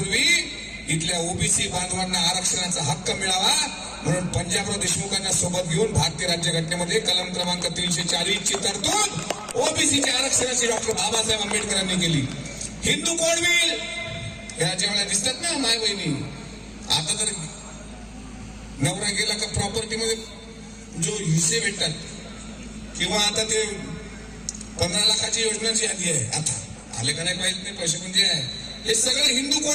इथल्या ओबीसी बांधवांना आरक्षणाचा हक्क मिळावा म्हणून पंजाबराव देशमुखांना सोबत घेऊन भारतीय राज्यघटनेमध्ये कलम क्रमांक 340 ची तरतूद ओबीसीच्या आरक्षणाची डॉक्टर बाबासाहेब आंबेडकरांनी केली. हिंदू कोण होईल या ज्यावेळेला दिसतात ना माय बहिणी. आता तर नवरा गेला का प्रॉपर्टी मध्ये जो हिस्से भेटतात, किंवा आता ते 15 लाखाची योजना जी आली आहे, आता आले का नाही पाहिजे नाही पैसे, पण जे आहे हे सगळे हिंदू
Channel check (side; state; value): both; identical; correlation 1.00